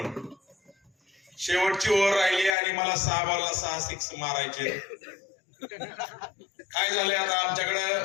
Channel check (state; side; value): drops out; right; at 2.6 s